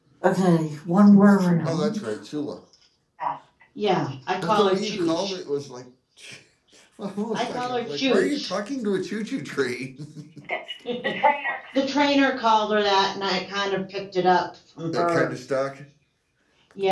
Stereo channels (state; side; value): identical; both; correlation 1.00